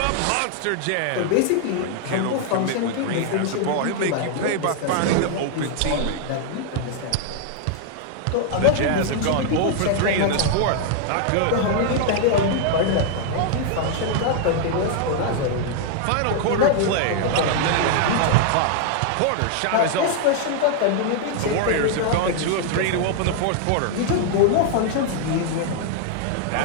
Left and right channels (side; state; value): both; different; correlation 0.00